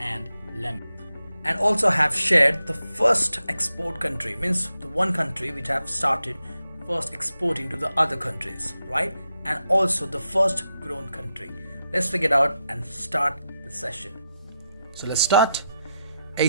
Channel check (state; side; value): inverted; both; correlation -0.86